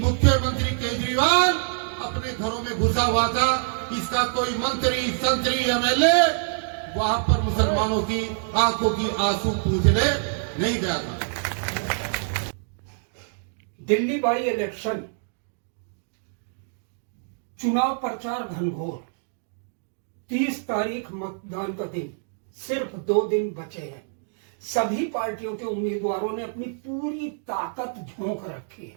केजरीवाल अपने घरों में घुसा हुआ था। इसका कोई मंत्री संतरी एमएलए वहां पर मुसलमानों की आंखों की आंसू पूछने नहीं गया था। दिल्ली बाई इलेक्शन चुनाव प्रचार घनघोर। 30 तारीख मतदान का दिन, सिर्फ 2 दिन बचे हैं। सभी पार्टियों के उम्मीदवारों ने अपनी पूरी ताकत झोंक रखी है।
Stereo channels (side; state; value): left; silent; digital silence